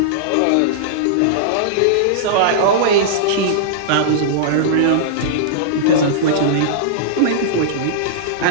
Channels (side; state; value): both; different; correlation -0.02